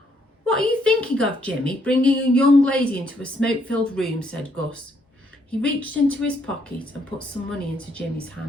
"What are you thinking of, Jimmy, bringing a young lady into a smoke-filled room?" said Gus. He reached into his pocket and put some money into Jimmy's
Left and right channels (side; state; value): both; normal; correlation 0.71